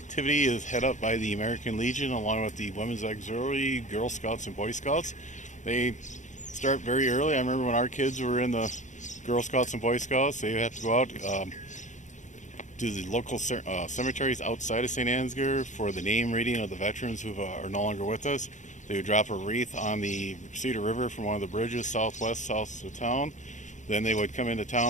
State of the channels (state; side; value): late; right; 0.35 ms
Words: is head up by the American Legion along with the Women's Auxiliary, Girl Scouts, and Boy Scouts. They start very early. I remember when our kids were in the Girl Scouts and Boy Scouts, they have to go out to the local cemeteries outside of St. Ansgar for the name reading of the veterans who are no longer with us. They would drop a wreath on the Cedar River from one of the bridges south of town. Then they would come into